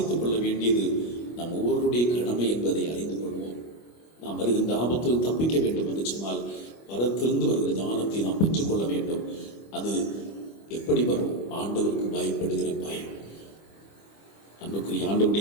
கொள்ள வேண்டியது நம் ஒவ்வொருடைய கடமை என்பதை அறிந்து கொள்வோம். நாம் வருகின்ற ஆபத்தில் தப்பிக்க வேண்டும் என்று சொன்னால் பரத்திலிருந்து வருகிற ஞானத்தை நாம் பெற்றுக்கொள்ள வேண்டும். அது எப்படி வரும்? ஆண்டவருக்கு பயப்படுகிற பயம். அன்புக்குரிய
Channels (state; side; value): late; right; 25 ms